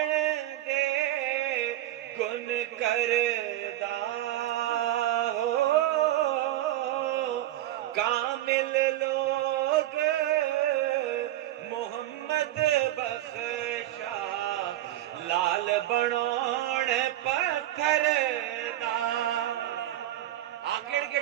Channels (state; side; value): quieter; left; 14.3 dB